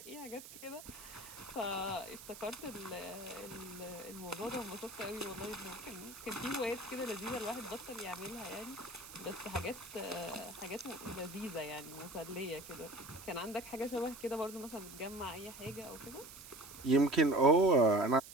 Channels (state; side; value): noise; right; hiss, 14 dB below the sound